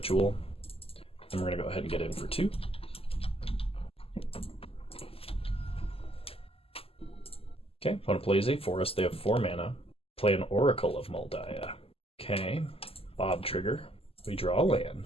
And we're going to go ahead and get in for 2. Okay, opponent plays a forest. They have 4 mana. Play an Oracle of Moldiah. Okay, Bob trigger. We draw a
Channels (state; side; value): late; right; 0.28 ms